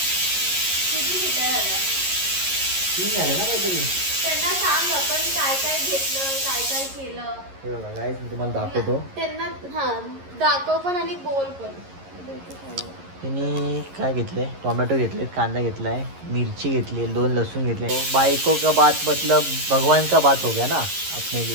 तीन झाले ना काहीतरी. त्यांना सांग आपण काय काय घेतलं, काय काय केलं. हे बघा गाईस मी तुम्हाला दाखवतो. त्यांना दाखव पण आणि बोल पण. तिने काय घेतलंय, टोमॅटो घेतले, कांदा घेतलाय, मिरची घेतली, 2 लहसुन घेतले. बाइको का बात मतलब भगवान का बात हो गया ना अपने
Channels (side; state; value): left; late; 11 ms